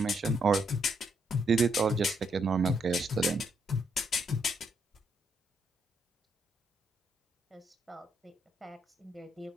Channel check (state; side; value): normal; both; correlation 0.75